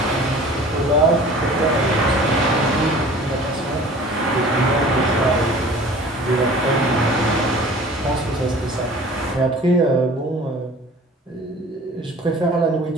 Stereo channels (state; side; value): normal; both; correlation 0.45